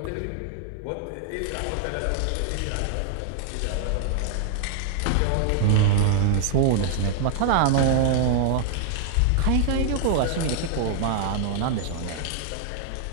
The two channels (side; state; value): both; different; correlation 0.00